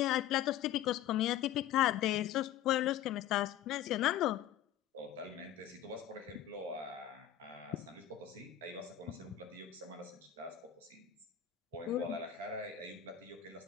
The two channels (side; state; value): right; quieter; 11.3 dB